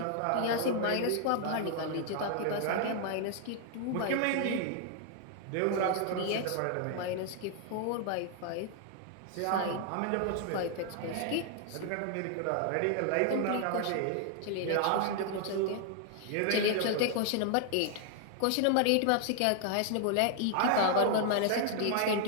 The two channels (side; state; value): both; different; correlation 0.00